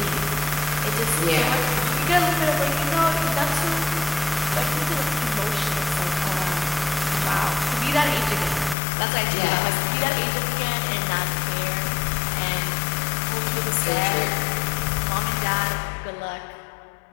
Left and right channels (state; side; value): drops out; right; at 8.8 s